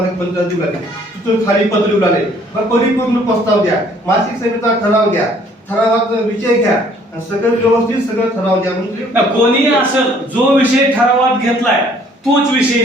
दिलं, तिथून खाली पत्र उडाले. मग परिपूर्ण प्रस्ताव द्या, मासिक सभेचा ठराव द्या, ठरावाचा विषय घ्या, सगळं व्यवस्थित सगळं ठराव द्या. म्हणजे कोणी असं जो विषय ठरावात घेतलाय तोच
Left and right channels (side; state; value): both; normal; correlation 0.59